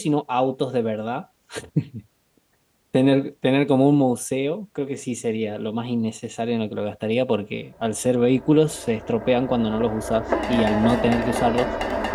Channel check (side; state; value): both; identical; correlation 1.00